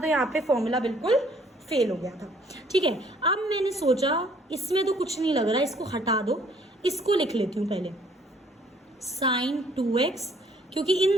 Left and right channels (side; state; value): both; normal; correlation 0.61